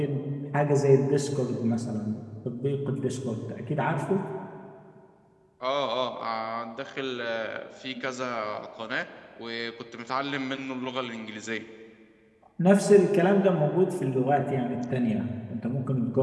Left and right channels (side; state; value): both; identical; correlation 1.00